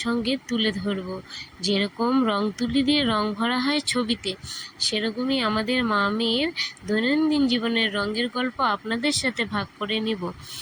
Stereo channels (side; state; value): both; identical; correlation 1.00